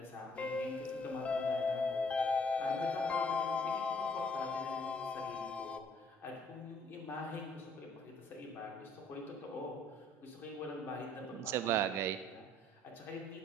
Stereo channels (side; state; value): both; normal; correlation 0.62